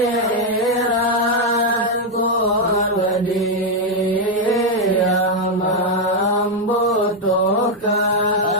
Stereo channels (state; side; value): normal; both; correlation 0.01